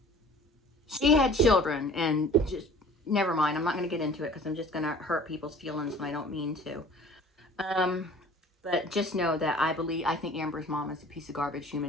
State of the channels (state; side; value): normal; both; correlation 0.48